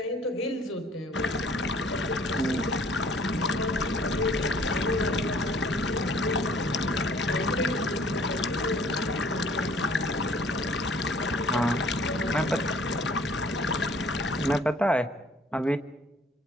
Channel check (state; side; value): normal; both; correlation 0.56